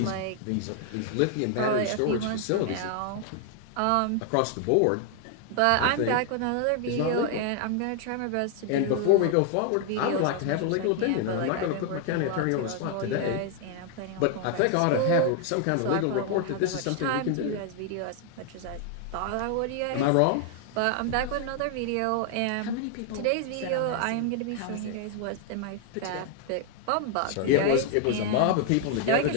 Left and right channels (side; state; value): both; different; correlation 0.00